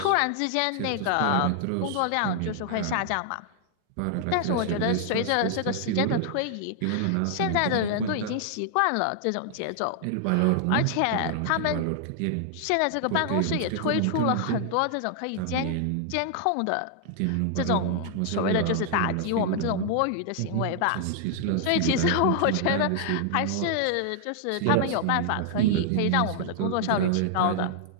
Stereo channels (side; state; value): both; different; correlation 0.00